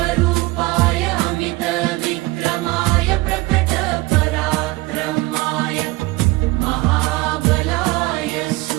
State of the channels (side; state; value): left; quieter; 21.2 dB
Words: अमितविक्रमाय प्रकटपराक्रमाय महाबलाय